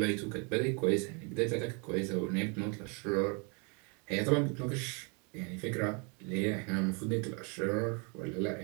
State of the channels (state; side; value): quieter; left; 34.3 dB